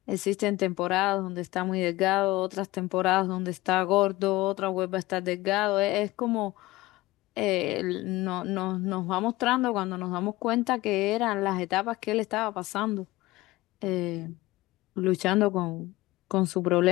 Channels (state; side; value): quieter; right; 19.1 dB